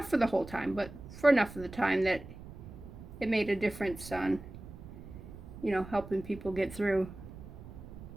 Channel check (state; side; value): noise; right; rumble, 14 dB below the sound